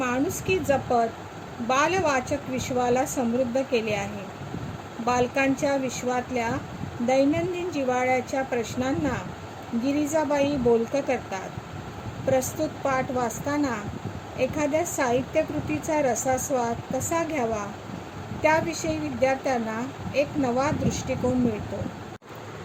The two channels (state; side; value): identical; both; correlation 1.00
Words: जपत बालवाचक विश्वाला समृद्ध केले आहे. बालकांच्या विश्वातल्या दैनंदिन जिव्हाळ्याच्या प्रश्नांना गिरिजाबाई बोलकं करतात. प्रस्तुत पाठ वाचताना एखाद्या साहित्यकृतीचा रसास्वाद कसा घ्यावा त्याविषयी विद्यार्थ्यांना एक नवा दृष्टिकोन मिळतो.